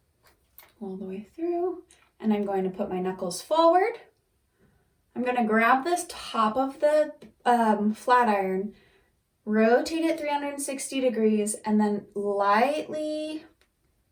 All the way through. And I'm going to put my knuckles forward. I'm going to grab this top of the flat iron, rotate it 360 degrees, and then light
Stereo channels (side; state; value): both; identical; correlation 1.00